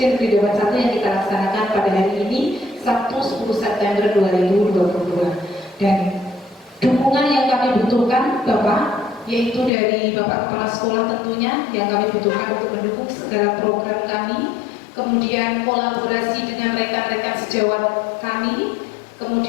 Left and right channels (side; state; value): right; drops out; at 9.7 s